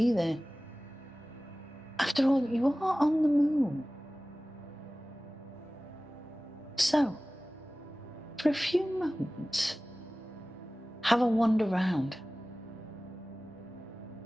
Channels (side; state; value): both; normal; correlation 0.97